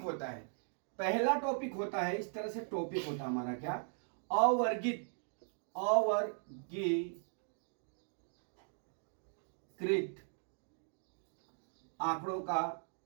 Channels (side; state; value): left; silent; 52 dB below the other